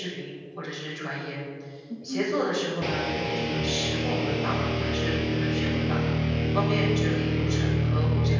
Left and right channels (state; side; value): identical; both; correlation 1.00